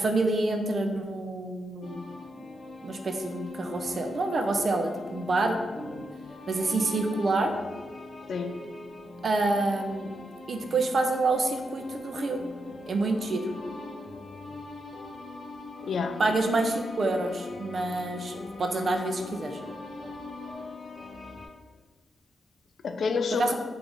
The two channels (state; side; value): normal; both; correlation 0.83